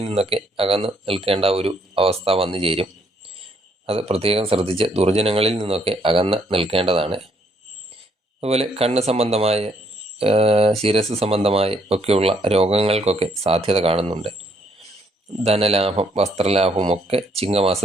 നിന്നൊക്കെ അകന്ന് നിൽക്കേണ്ട ഒരു അവസ്ഥ വന്നു ചേരും. അത് പ്രത്യേകം ശ്രദ്ധിച്ച് ദുർജനങ്ങളിൽ നിന്നൊക്കെ അകന്ന് നിൽക്കേണ്ടതാണ്. അതുപോലെ കണ്ണ് സംബന്ധമായ, ശിരസ് സംബന്ധമായ ഒക്കെയുള്ള രോഗങ്ങൾക്കൊക്കെ സാധ്യത കാണുന്നുണ്ട്. ധനലാഭം, വസ്ത്രലാഭവും ഒക്കെ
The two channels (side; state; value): both; normal; correlation 0.70